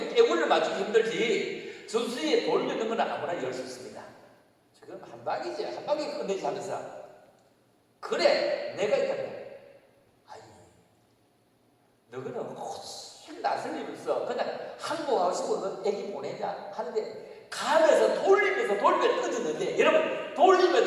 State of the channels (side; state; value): both; identical; correlation 1.00